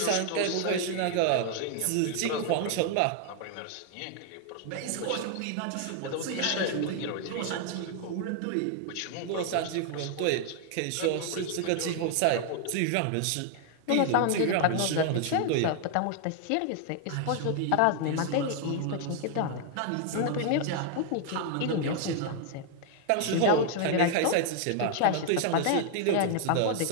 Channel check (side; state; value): both; different; correlation 0.00